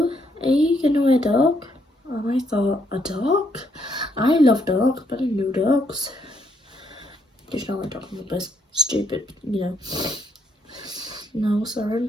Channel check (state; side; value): normal; both; correlation 0.73